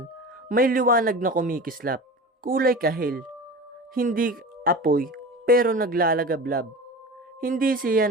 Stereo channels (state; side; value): normal; both; correlation 0.33